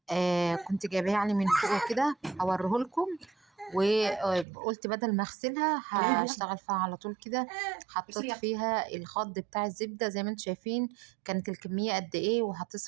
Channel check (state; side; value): drops out; left; at 4.5 s